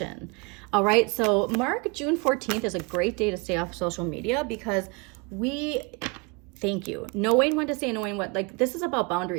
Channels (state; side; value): quieter; left; 29.3 dB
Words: All right, so mark June 14th is a great day to stay off social media, because thank you, knowing when to say, knowing what, like, this is about